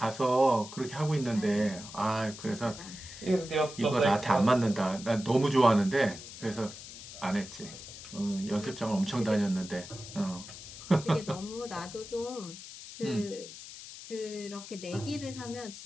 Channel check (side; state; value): left; noise; hiss, 13 dB below the sound